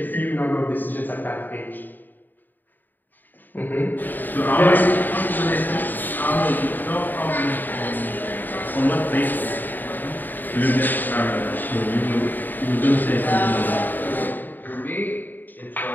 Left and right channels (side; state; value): right; late; 0.089 ms